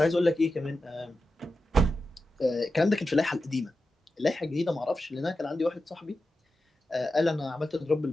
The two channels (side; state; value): both; normal; correlation 0.91